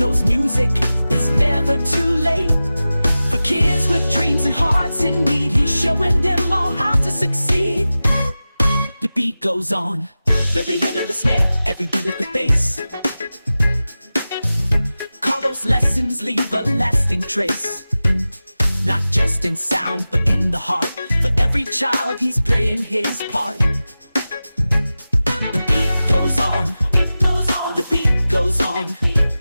music is never too late. For kids with dreams and hearts in need, he's showing them all how to succeed. The beat goes on. Every hit of the snare, every beat of the bass. Carlos' lessons leave a lasting trace, not just in sound, but in the heart. For every child, he's playing his part. The beat goes on. The beat goes on. The beat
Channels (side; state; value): both; inverted; correlation -0.95